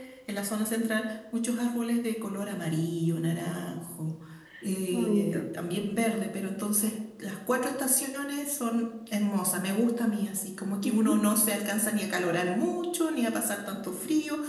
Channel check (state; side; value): identical; both; correlation 1.00